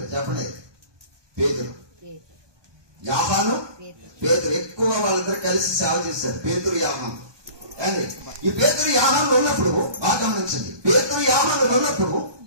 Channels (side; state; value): left; late; 1.2 ms